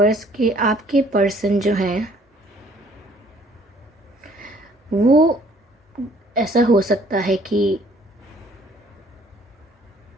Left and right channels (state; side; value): normal; both; correlation 0.59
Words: कि आपके पर्सन जो हैं वो, ऐसा हो सकता है कि